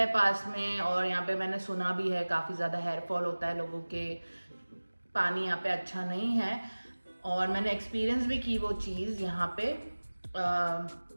पास में और यहाँ पे मैंने सुना भी है काफ़ी ज़्यादा हेयर फॉल होता है लोगों के, पानी यहाँ पे अच्छा नहीं है और मैंने एक्सपीरियंस भी की वो चीज़ यहाँ पे।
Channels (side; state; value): both; inverted; correlation -1.00